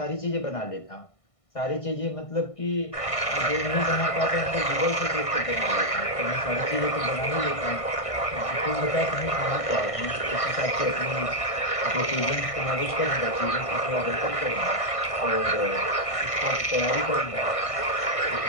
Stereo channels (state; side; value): late; right; 1.6 ms